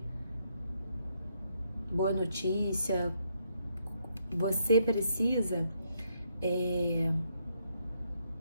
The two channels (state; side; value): inverted; both; correlation -0.74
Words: boa notícia, você precisa